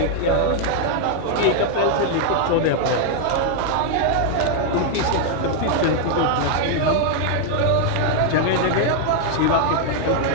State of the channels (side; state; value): both; different; correlation 0.00